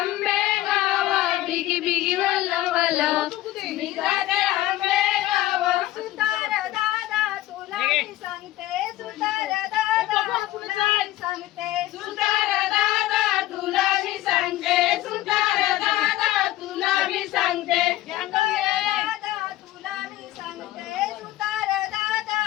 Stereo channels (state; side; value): quieter; right; 15.6 dB